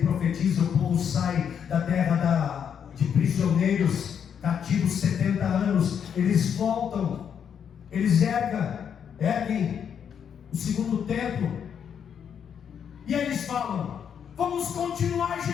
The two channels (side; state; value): right; quieter; 7.9 dB